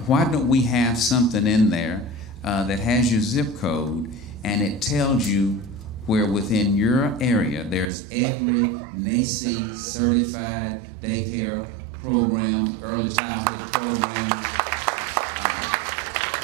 why don't we have something in there that has your zip code, and it tells you where within your area there's every NACCE certified daycare program, early childhood program.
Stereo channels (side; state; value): left; drops out; at 7.9 s